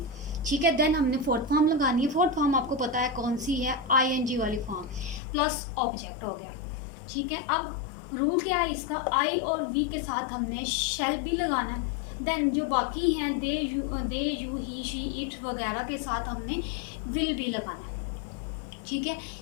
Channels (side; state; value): right; drops out; at 5.2 s